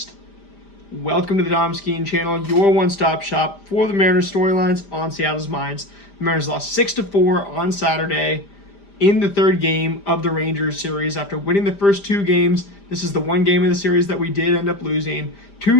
Welcome to the Dom Skiing Channel, your one-stop shop for the Mariners storylines on Seattle's minds. The Mariners lost 6-4 on Saturday in the third game of the Rangers series after winning the first two games. This is the one game of the series that we did end up losing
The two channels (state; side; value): late; right; 5.0 ms